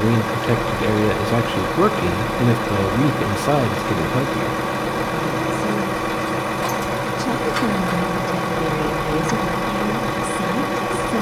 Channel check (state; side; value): identical; both; correlation 1.00